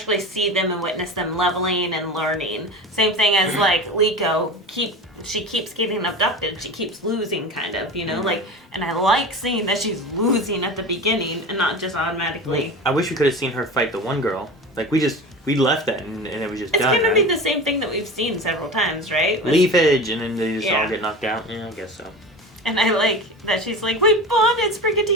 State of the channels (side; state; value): both; normal; correlation 0.31